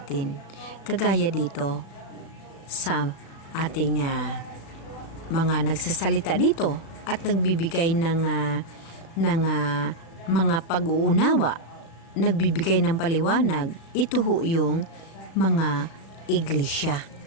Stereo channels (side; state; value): right; late; 36 ms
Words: Kagaya dito sa ating mga nagsasalita dito at nagbibigay ng mga pag-uunawa, nagbibigay ng paliwanag. Ito ho yung mga iglesia.